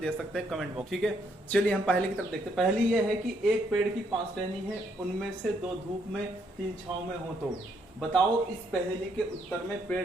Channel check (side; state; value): both; normal; correlation 0.72